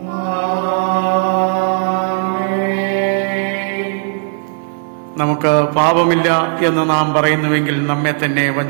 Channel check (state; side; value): silent; left; digital silence